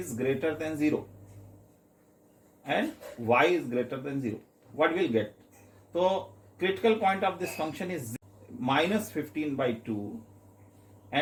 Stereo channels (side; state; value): both; identical; correlation 1.00